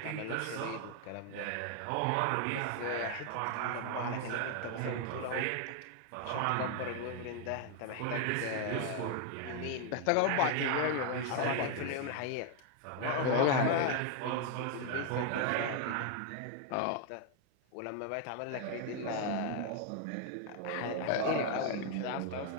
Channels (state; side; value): different; both; correlation 0.01